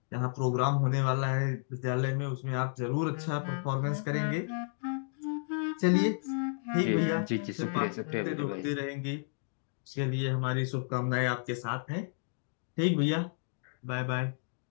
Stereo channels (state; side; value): silent; right; digital silence